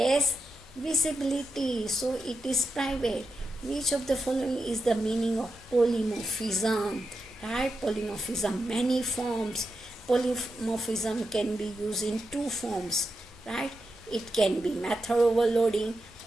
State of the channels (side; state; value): both; normal; correlation 0.88